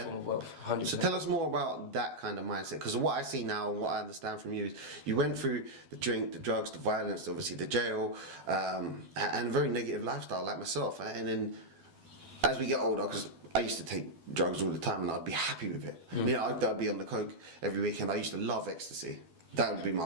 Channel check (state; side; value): late; left; 12 ms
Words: form of wealth. 100%. So tell us more about that kind of mindset, because what I see now and what I understand from you is you went through the drink, the drugs, the violence, obviously the jail, and a very negative lifestyle like myself. And then as we get older, because I used to take drugs all the time and I'd be happy with it. I'd be on the coke every weekend. I used to love ecstasy. That would be my